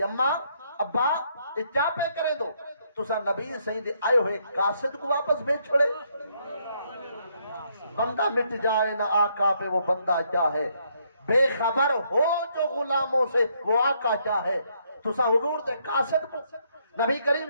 اماں ابا یہ کیا پہ کریں دو تسا نبی صحیح دے آئے ہوئے قاصد کو واپس بھیج چھوڑے بندہ مٹ جائے نہ آقا پہ وہ بندہ کیا ہے بے خبر ہو جو غلاموں سے وہ آقا کیا ہے تسا حضور دے قاصد کو نبی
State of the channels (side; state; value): both; inverted; correlation -0.72